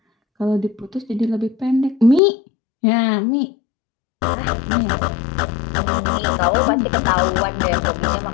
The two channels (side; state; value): right; drops out; at 2.2 s